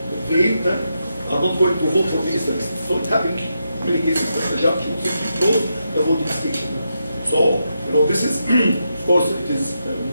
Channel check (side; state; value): both; inverted; correlation -0.84